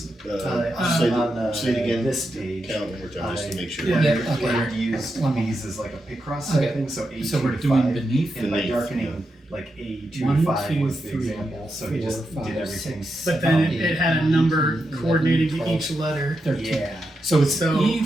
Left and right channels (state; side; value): normal; both; correlation 0.86